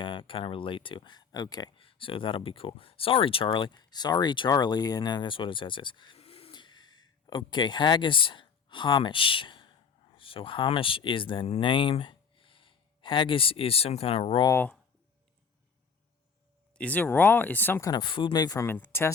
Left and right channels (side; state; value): right; quieter; 6.0 dB